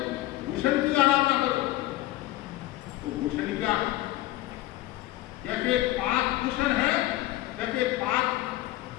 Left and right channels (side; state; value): right; quieter; 16.4 dB